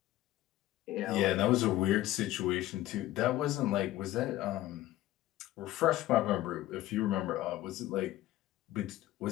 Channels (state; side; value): quieter; right; 15.4 dB